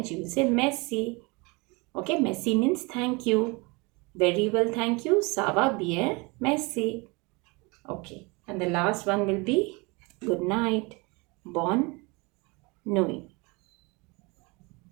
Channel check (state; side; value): quieter; left; 27.5 dB